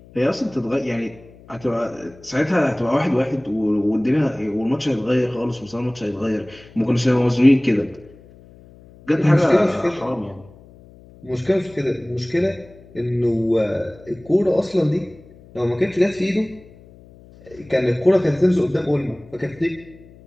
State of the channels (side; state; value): left; noise; hum, 23 dB below the sound